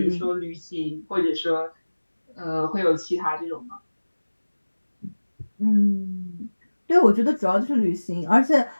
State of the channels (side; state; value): both; inverted; correlation -1.00